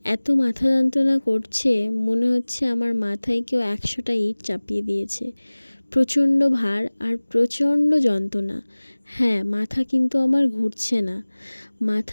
এত মাথা যন্ত্রণা করছে, মনে হচ্ছে আমার মাথায় কেউ 100টা ইট চাপিয়ে দিয়েছে। প্রচণ্ড ভার আর প্রচণ্ড যন্ত্রণা। হ্যাঁ, মাথা কিন্তু আমার ঘুরছে না।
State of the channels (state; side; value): inverted; both; correlation -1.00